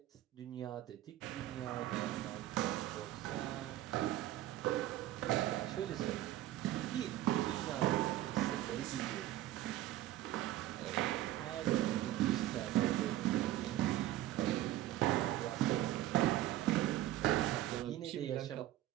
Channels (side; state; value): left; quieter; 14.4 dB